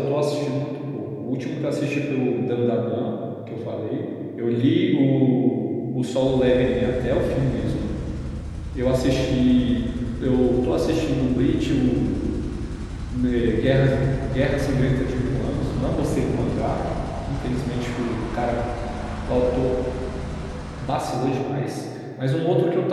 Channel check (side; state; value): both; identical; correlation 1.00